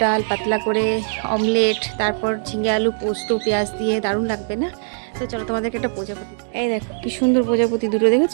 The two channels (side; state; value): left; silent; digital silence